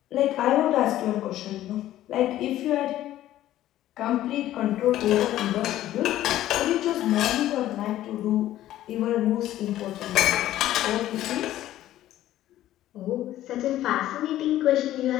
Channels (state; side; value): quieter; right; 13.6 dB